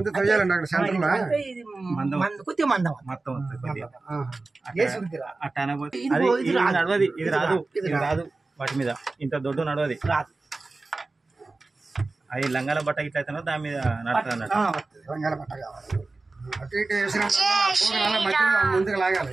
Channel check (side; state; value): left; quieter; 3.5 dB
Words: తెలియాలండి అక్కడ సెంటర్ లో కొద్దిగా మందం మొత్తం వస్తుంది అట్ట అనబోతే ఇది నడవది, ఇది రాదు, ఇది రాదు. వాటి మీద ఇంత దొడ్డు నడవది రాదు. అది లంగాల బట్ట ఇట్లా అయితేనో దాని మీద నడుతుంది అన్నట్టు. రంగాల పట్ట కావాలి. అటు ఇటు వేసిన ముందుకు లాగాలి.